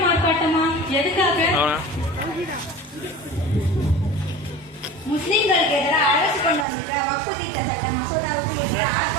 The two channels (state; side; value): drops out; left; at 6.7 s